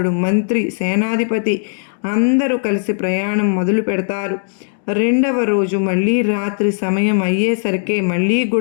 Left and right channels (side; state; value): right; silent; digital silence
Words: మంత్రి సేనాధిపతి అందరూ కలిసి ప్రయాణం మొదలు పెడతారు. 2వ రోజు మళ్ళీ రాత్రి సమయం అయ్యేసరికి మళ్ళీ